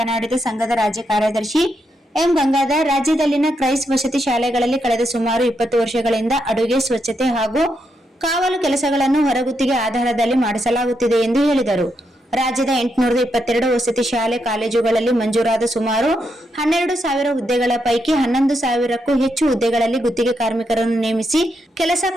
ಸಂಘದ ರಾಜ್ಯ ಕಾರ್ಯದರ್ಶಿ ಎಂ ಗಂಗಾಧರ್, ರಾಜ್ಯದಲ್ಲಿನ ಕ್ರೈಸ್ ವಸತಿ ಶಾಲೆಗಳಲ್ಲಿ ಕಳೆದ ಸುಮಾರು 20 ವರ್ಷಗಳಿಂದ ಅಡುಗೆ, ಸ್ವಚ್ಛತೆ ಹಾಗೂ ಕಾವಲು ಕೆಲಸಗಳನ್ನು ಹೊರಗುತ್ತಿಗೆ ಆಧಾರದಲ್ಲಿ ಮಾಡಿಸಲಾಗುತ್ತಿದೆ ಎಂದು ಹೇಳಿದರು. ರಾಜ್ಯದ 822 ವಸತಿ ಶಾಲೆ ಕಾಲೇಜುಗಳಲ್ಲಿ ಮಂಜೂರಾದ ಸುಮಾರು 12,000 ಹುದ್ದೆಗಳ ಪೈಕಿ 11,000ಕ್ಕೂ ಹೆಚ್ಚು ಹುದ್ದೆಗಳಲ್ಲಿ ಗುತ್ತಿಗೆ ಕಾರ್ಮಿಕರನ್ನು ನೇಮಿಸಿ ಕೆಲಸ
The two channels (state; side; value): normal; both; correlation 0.81